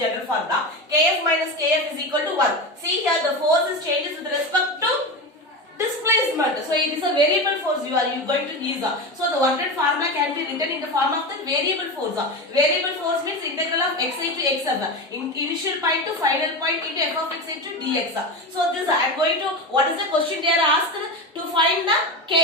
formula. Kf minus Kf is equal to 1. See here the force is changes with respect to displacement. So it is a variable force you are going to use. So the work done formula can be written in the form of the variable force. Variable force means integral of xi to xf. Initial point to final point into f of x into dx. So this I am going to, what is the question they are asked? To find the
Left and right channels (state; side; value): normal; both; correlation 0.22